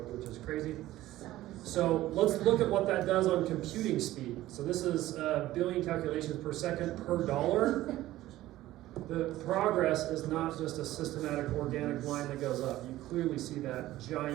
which is crazy. So let's look at what that does on computing speed. So this is billion calculations per second per dollar. The progress is not just a systematic organic line that goes up. You clearly see that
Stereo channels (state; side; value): quieter; left; 15.6 dB